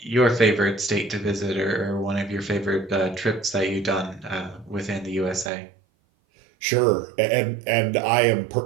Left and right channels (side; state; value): left; drops out; at 5.5 s